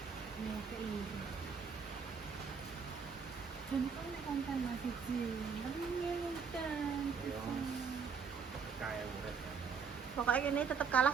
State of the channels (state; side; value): quieter; left; 6.0 dB